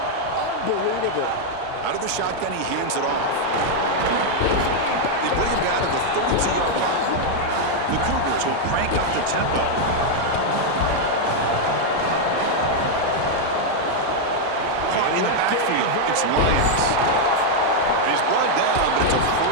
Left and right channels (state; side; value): different; both; correlation 0.00